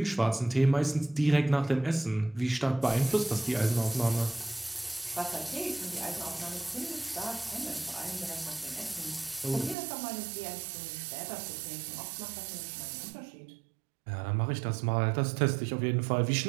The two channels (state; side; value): drops out; left; at 9.8 s